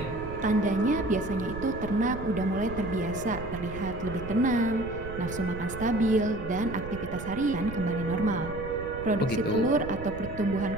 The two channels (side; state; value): right; noise; rumble, 10 dB below the sound